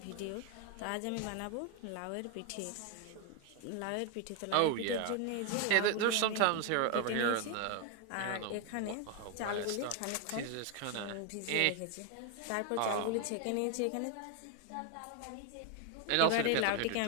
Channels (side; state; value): both; different; correlation 0.01